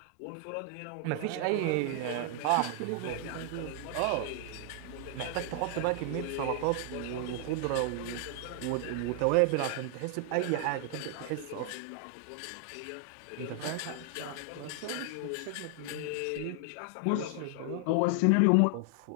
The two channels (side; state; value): both; different; correlation 0.00